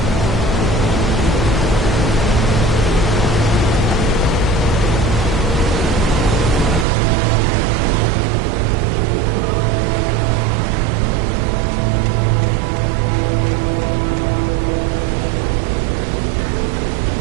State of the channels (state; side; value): drops out; left; at 6.9 s